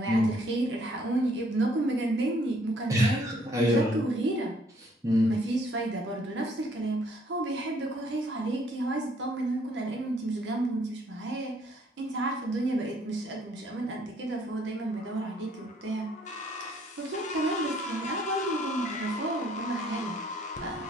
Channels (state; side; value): normal; both; correlation 0.64